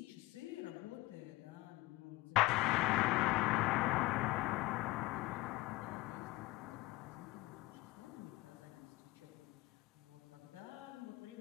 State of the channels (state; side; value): quieter; right; 19.7 dB